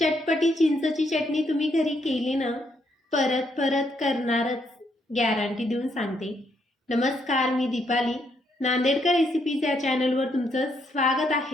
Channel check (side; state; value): both; normal; correlation 0.75